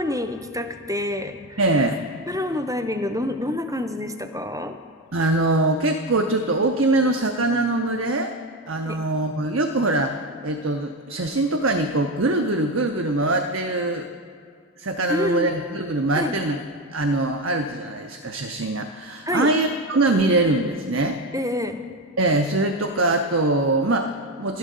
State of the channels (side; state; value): both; normal; correlation 0.17